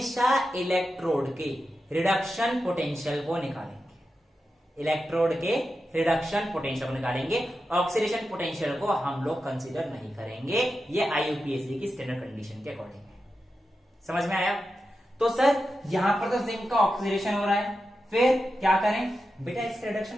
इलेक्ट्रोड के रिडक्शन पोटेंशियल को निकालेंगे। इलेक्ट्रोड के रिडक्शन पोटेंशियल को निकालेंगे, ऑक्सीडेशन पोटेंशियल को हम लोग कंसीडर नहीं करेंगे, ये IUPAC की स्टैंडर्ड कंडीशन के अकॉर्डिंग है। समझ में आया? तो सर यहां पर तो जिंक का ऑक्सीडेशन हो रहा है, फिर क्या करें बेटा, इसका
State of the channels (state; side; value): normal; both; correlation 0.90